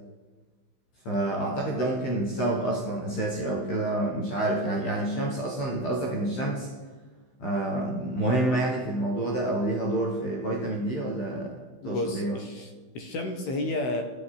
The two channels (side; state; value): right; late; 16 ms